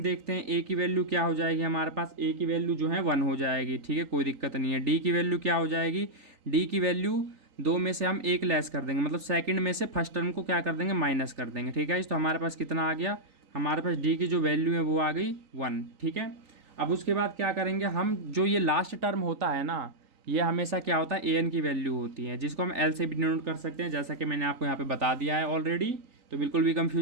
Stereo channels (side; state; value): left; late; 3.9 ms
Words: देखते हैं ए की वैल्यू क्या हो जाएगी हमारे पास, ए की वैल्यू जो है 1 हो जाएगी। ठीक है, कोई दिक्कत नहीं है। डी की वैल्यू क्या हो जाएगी, डी की वैल्यू 2 में से हम 1 लेस कर देंगे, मतलब सेकंड में से फर्स्ट टर्म को क्या कर देंगे, माइनस कर देंगे। ठीक है, तो हमारे पास कितना आ गया, हमारे पास डी की जो वैल्यू है वो आ गई 1। ठीक है, अब उसके बाद क्या करेंगे हम, जो ये लास्ट टर्म होता है ना, ये हमेशा क्या होता है, ए एन की वैल्यू होती है, जिसको हम एल से भी डिनोट कर सकते हैं, जैसा कि मैंने आपको यहाँ पे बता दिया है ऑलरेडी। तो बिल्कुल भी